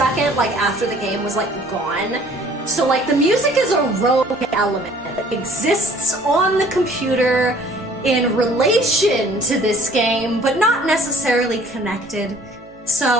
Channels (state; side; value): normal; both; correlation 0.55